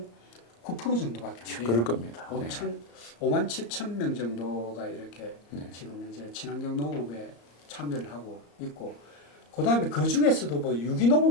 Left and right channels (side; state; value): right; late; 34 ms